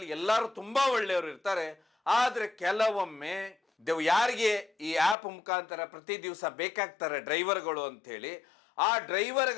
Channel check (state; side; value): drops out; right; at 5.2 s